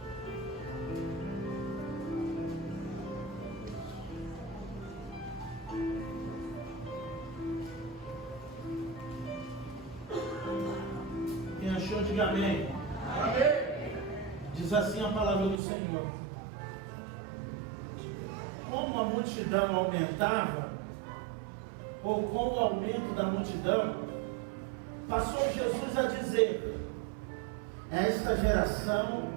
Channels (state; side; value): drops out; left; at 15.6 s